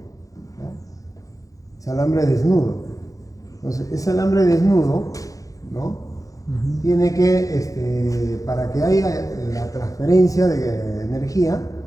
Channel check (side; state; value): right; late; 0.17 ms